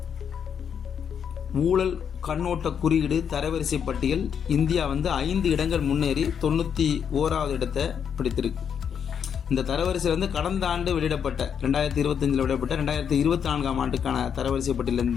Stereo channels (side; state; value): right; quieter; 7.7 dB